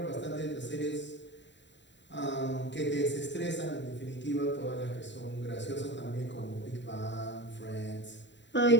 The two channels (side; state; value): right; late; 0.52 ms